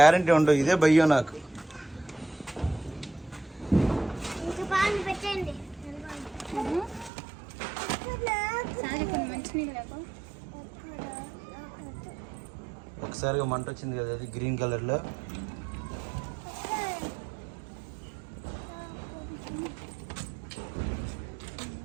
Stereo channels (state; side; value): drops out; left; at 7.1 s